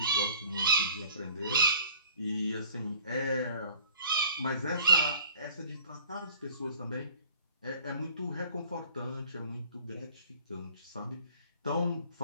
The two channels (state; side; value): inverted; both; correlation -0.51